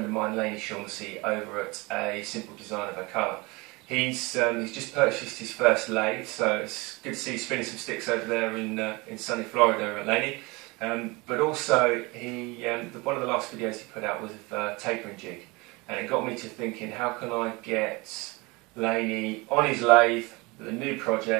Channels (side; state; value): left; quieter; 25.1 dB